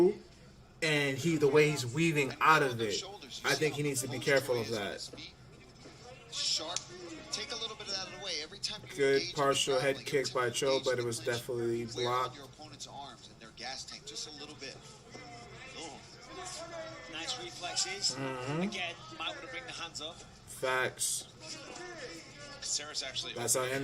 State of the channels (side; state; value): both; identical; correlation 1.00